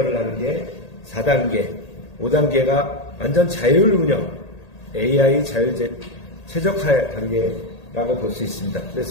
하는 게 4단계, 5단계가 완전 자율 운영 AI 자율 최적화 단계라고 볼 수 있습니다.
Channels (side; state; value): right; late; 1.8 ms